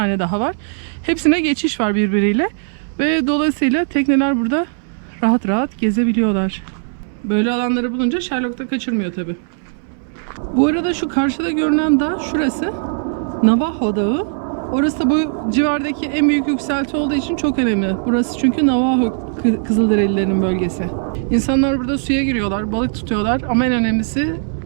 daha var. Hepsine geçiş var birbiriyle. Ve dolayısıyla tekneler burada rahat rahat gezebiliyorlar. Böyle alanları bulunca Sherlock da kaçırmıyor tabii. Bu arada şu karşıda görünen dağ şurası. Navajo Dağı. Orası da bu civardaki en büyük yükselti olduğu için çok önemli. Burası çünkü Navajo Kızılderililerin bölgesi. İnsanlar burada suya giriyorlar, balık tutuyorlar ama en önemlisi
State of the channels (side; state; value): left; silent; digital silence